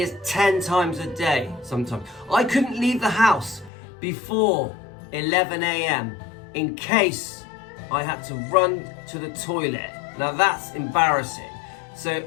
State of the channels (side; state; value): right; drops out; at 3.7 s